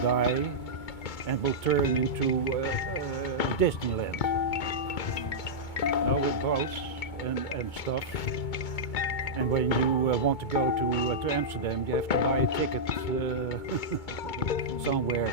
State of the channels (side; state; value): right; late; 2.2 ms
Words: die and will turn into Disneyland. Now with boats and stuff. And when you want to go to Amsterdam, you have to buy a ticket somewhere